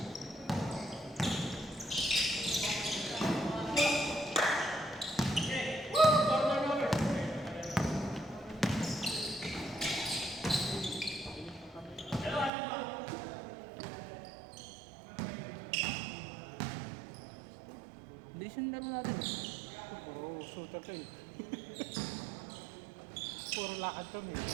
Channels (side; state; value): left; drops out; at 12.5 s